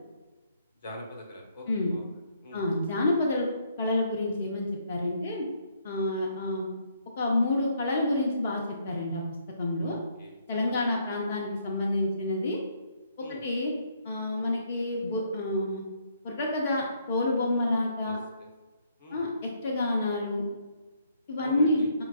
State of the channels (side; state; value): both; inverted; correlation -0.70